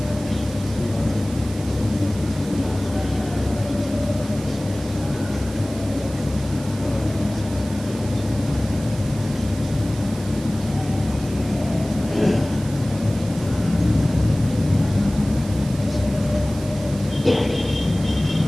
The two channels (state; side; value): noise; right; hiss, 16 dB below the sound